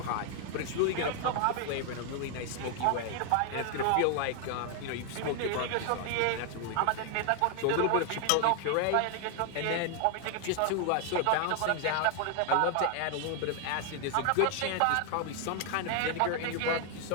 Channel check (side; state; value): both; different; correlation 0.00